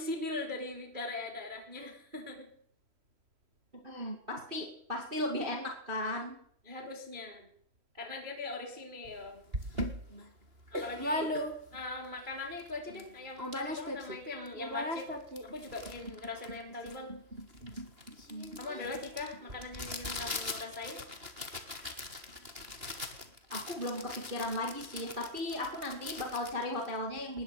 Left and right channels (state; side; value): late; left; 2.8 ms